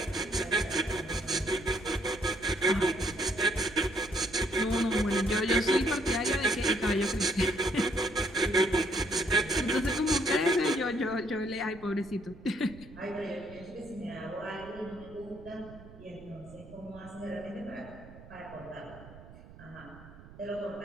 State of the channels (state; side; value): noise; right; rumble, 19 dB below the sound